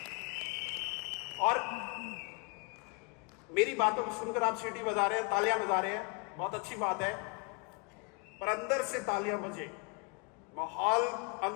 और मेरी बातों को सुनकर आप सीटी बजा रहे हैं, तालियां बजा रहे हैं, बहुत अच्छी बात है, पर अंदर से तालियां बजे, माहौल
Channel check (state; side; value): quieter; right; 32.4 dB